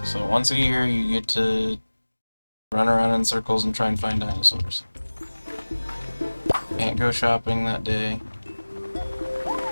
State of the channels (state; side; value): inverted; both; correlation -1.00